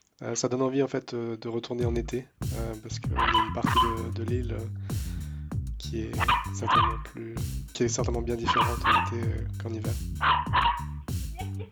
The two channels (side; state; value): both; identical; correlation 1.00